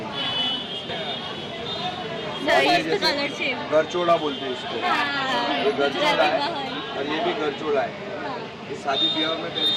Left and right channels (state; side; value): identical; both; correlation 1.00